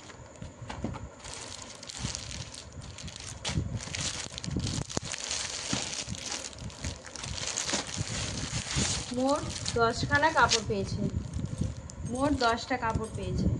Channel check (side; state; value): both; identical; correlation 1.00